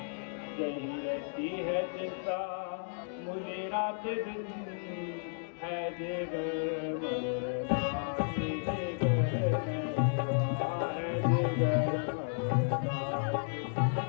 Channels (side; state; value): right; silent; digital silence